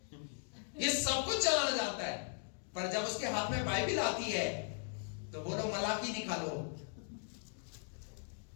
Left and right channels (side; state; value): right; silent; 52 dB below the other